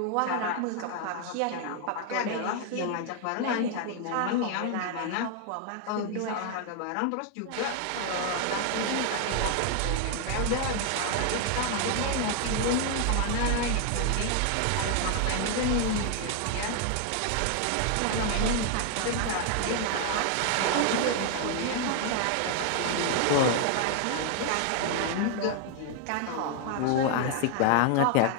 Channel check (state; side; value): different; both; correlation 0.00